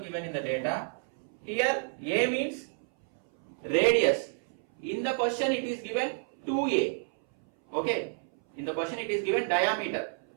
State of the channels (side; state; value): left; silent; 58 dB below the other